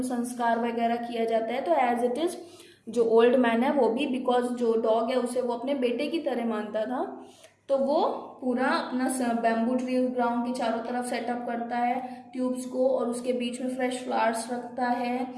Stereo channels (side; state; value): both; identical; correlation 1.00